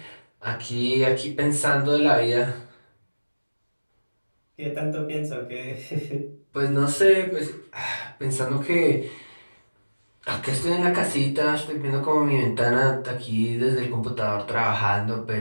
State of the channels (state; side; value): inverted; both; correlation -1.00